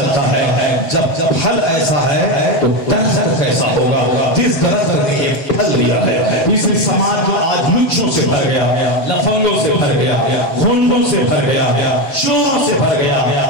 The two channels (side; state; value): right; late; 6.9 ms